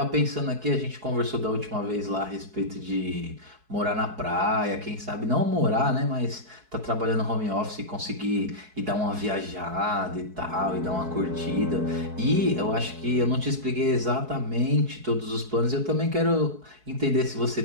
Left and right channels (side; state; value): left; late; 4.6 ms